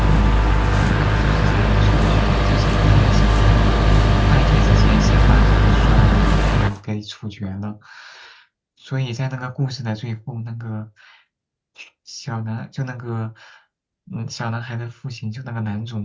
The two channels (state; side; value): identical; both; correlation 1.00